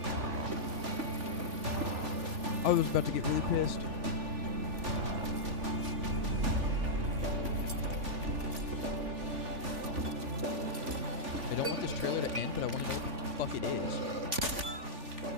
I was about to get really pissed. I don't want this trailer to end, but I want to know what the fuck it is.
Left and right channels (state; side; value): late; left; 3.5 ms